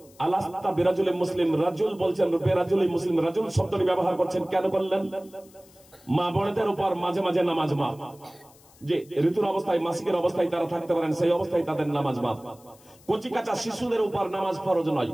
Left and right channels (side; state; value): left; noise; hiss, 27 dB below the sound